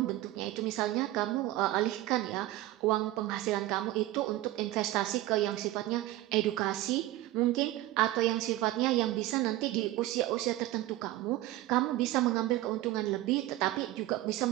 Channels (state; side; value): quieter; left; 16.2 dB